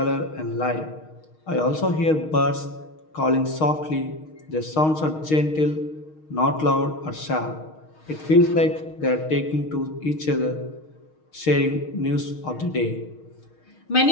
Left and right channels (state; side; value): late; right; 6.4 ms